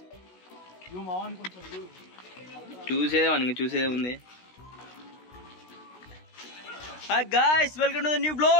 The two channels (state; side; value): late; right; 16 ms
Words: చూసేదే ఉంది hi guys welcome to the new